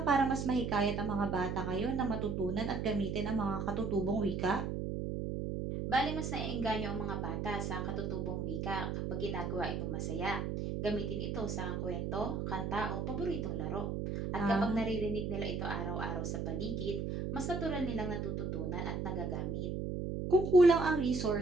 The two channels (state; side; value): noise; right; hum, 2 dB below the sound